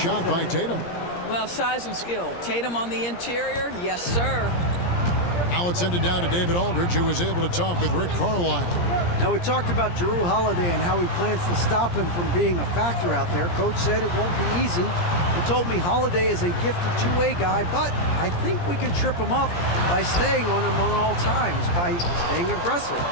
by Tatum. Well, size and skill. Tatum on the interior, yes, sir. Now it's ended down to David Aldridge, who was able to talk with Rick Carlisle. Now, we talked about Jrue Holiday and how he plans to stop him from being a factor out there. Coach said it won't be easy. He told me Holiday is a gifted two-way guy, but I think we can trip him up by staying on him on all times, by staying aggressive.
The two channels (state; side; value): late; right; 17 ms